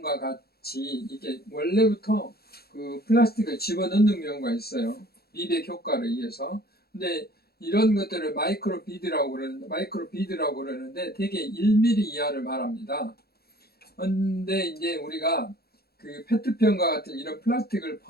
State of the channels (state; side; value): late; right; 0.46 ms